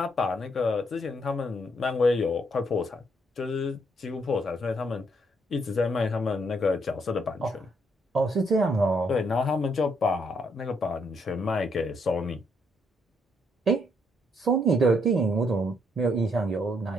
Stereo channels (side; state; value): both; normal; correlation 0.73